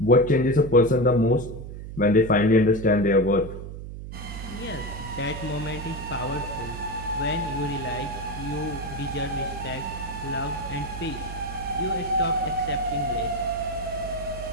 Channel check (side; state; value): right; noise; hum, 10 dB below the sound